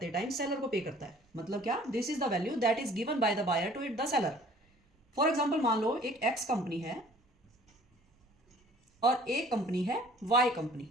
टाइम सेलर को पे करता है। मतलब क्या? This is the value that is given by the buyer to it the seller. For example, मान लो एक एक्स कंपनी है और एक कंपनी है वाई कंपनी।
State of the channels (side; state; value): both; normal; correlation 0.53